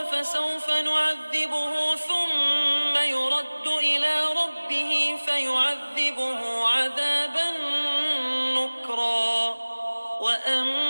فسوف نعذبه ثم يرد إلى ربه فيعذبه عذابا نكرا.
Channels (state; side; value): inverted; both; correlation -1.00